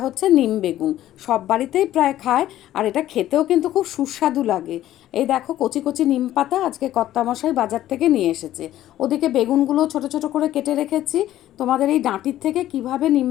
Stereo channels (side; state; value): right; quieter; 13.3 dB